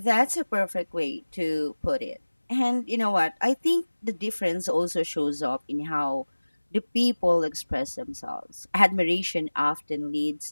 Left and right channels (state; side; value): inverted; both; correlation -1.00